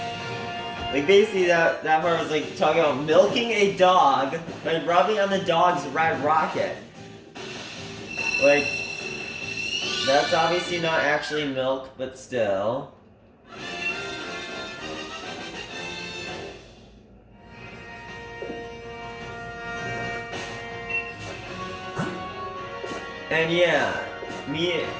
Like, basically, that part was, like, talking about milking a dog by rubbing on the dog's Red Rocket. Like, that's obviously not actually milk, but still. And yeah, me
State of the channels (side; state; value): both; identical; correlation 1.00